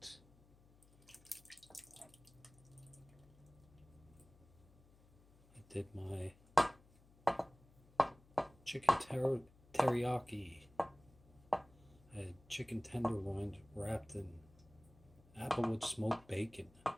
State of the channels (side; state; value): left; noise; hum, 27 dB below the sound